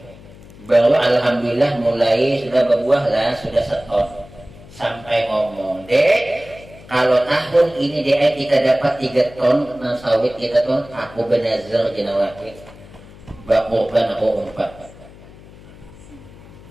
bahwa alhamdulillah mulai sudah berbuah lah, sudah setor. Sampai ngomong, dek, kalau tahun ini dek kita dapat 3 ton sawit kita ton, aku benazar jenawakit bakurban aku 4.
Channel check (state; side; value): noise; left; hum, 20 dB below the sound